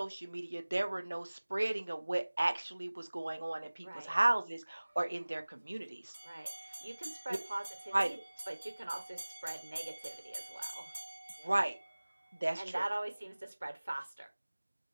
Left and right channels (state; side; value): inverted; both; correlation -1.00